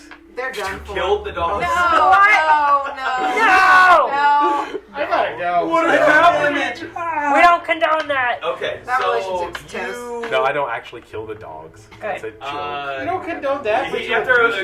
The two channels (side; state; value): both; identical; correlation 1.00